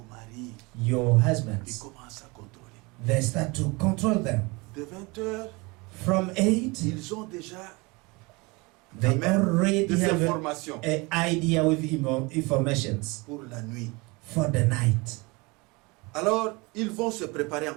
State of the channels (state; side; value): quieter; left; 26.0 dB